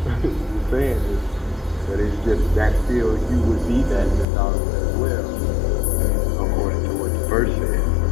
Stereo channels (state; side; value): drops out; right; at 4.2 s